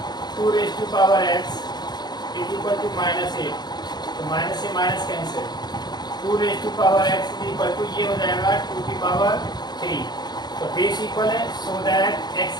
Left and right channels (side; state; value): right; late; 0.20 ms